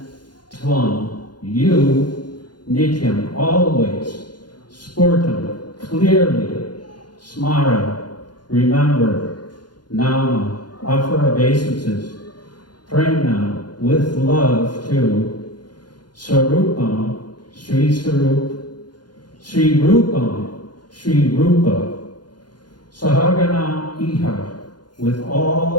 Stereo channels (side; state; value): right; late; 0.71 ms